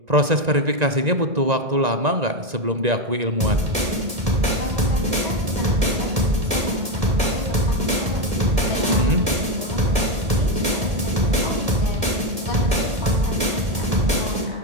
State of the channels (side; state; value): left; late; 1.7 ms